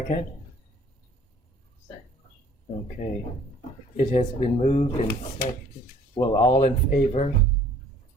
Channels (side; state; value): both; normal; correlation 0.55